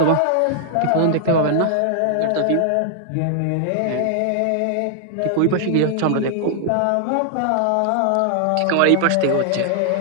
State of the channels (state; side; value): different; both; correlation 0.00